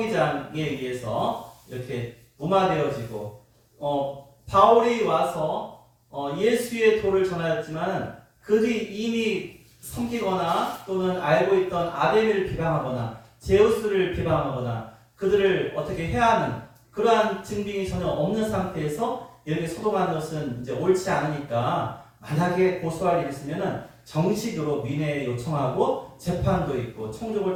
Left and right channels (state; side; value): identical; both; correlation 1.00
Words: 의해서 이렇게 무마되어지고 바울이 와서 예수의 도를 전하였지만 그들이 이미 섬기거나 또는 알고 있던 아데미를 비방하거나 제우스를 비방하거나 그들을 어떻게 해야 하는 그러한 증빙이 전혀 없는 상태에서 이렇게 소동하는 것은 이제 옳지 않으니까 만약에 고소할 일이 있으면은 정식으로 민회에 요청하고 재판도 있고 총족을